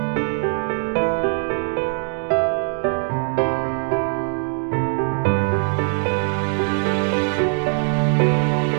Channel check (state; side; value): silent; left; 64 dB below the other